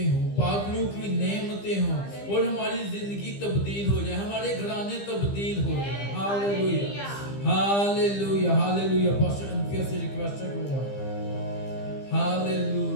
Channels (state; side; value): late; right; 15 ms